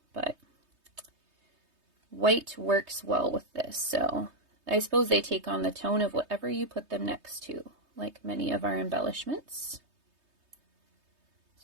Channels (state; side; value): late; left; 3.2 ms